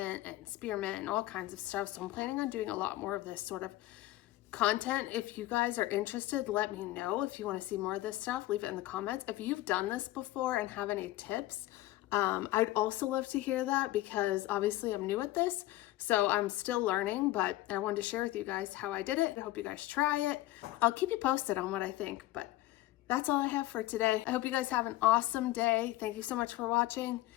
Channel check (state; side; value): quieter; right; 16.6 dB